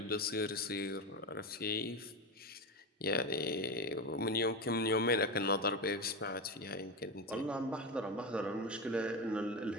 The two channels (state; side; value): normal; both; correlation 0.18